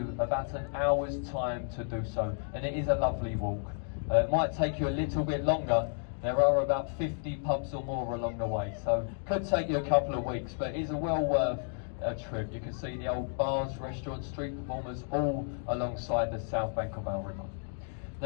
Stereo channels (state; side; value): silent; right; 56 dB below the other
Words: about an hour's time to do so, and it is a lovely walk. It might take you a little bit longer. There are about 50 pubs or more along the way, so could take you a couple of weeks, but it is a well worth a trip. You can see the old bars, restaurants, street performers all alongside the south bank of our river.